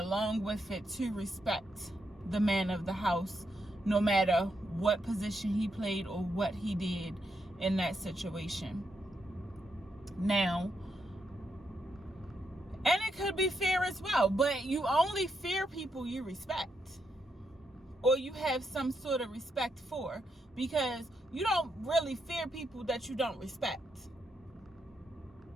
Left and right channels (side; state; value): both; normal; correlation 0.81